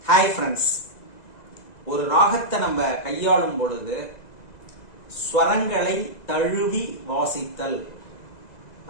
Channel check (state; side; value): late; right; 2.0 ms